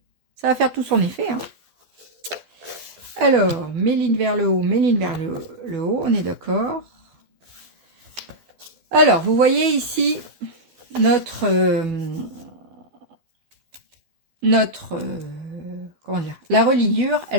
Ça va faire tout son effet. Hein. Alors, mes lignes vers le haut, mes lignes vers le haut, on est d'accord. Alors, vous voyez ici notre comment dire, la reliure,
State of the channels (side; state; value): left; late; 12 ms